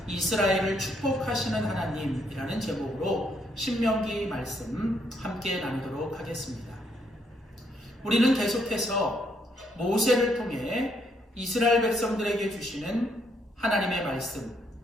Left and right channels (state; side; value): normal; both; correlation 0.73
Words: 이스라엘을 축복하시는 하나님이라는 제목으로 신명기 말씀 함께 나누도록 하겠습니다. 우리는 계속해서 모세를 통해 이스라엘 백성들에게 주시는 하나님의 말씀,